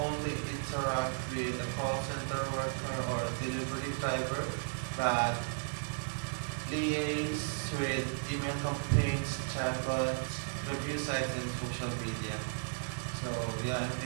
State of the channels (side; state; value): left; silent; digital silence